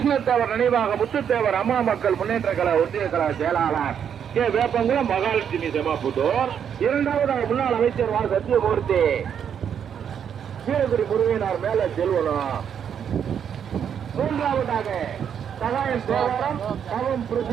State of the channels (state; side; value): quieter; left; 8.2 dB